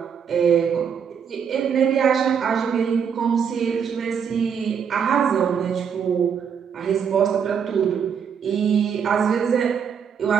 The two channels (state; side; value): quieter; left; 7.3 dB